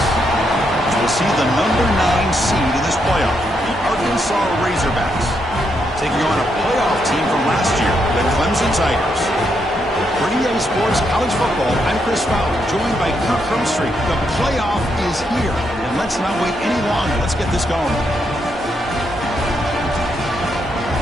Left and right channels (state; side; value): normal; both; correlation 0.79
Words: We'll see the number 9 seed in this playoff, the Arkansas Razorbacks, taking on a playoff team from last year, the Clemson Tigers. For EA Sports College Football, I'm Chris Fowler, joined by Kirk Herbstreit. The playoff is here, and let's not wait any longer. Let's get this going.